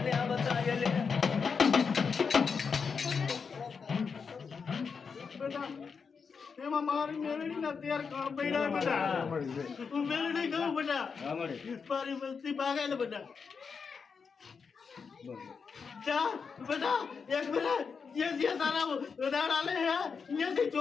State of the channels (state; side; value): quieter; right; 5.6 dB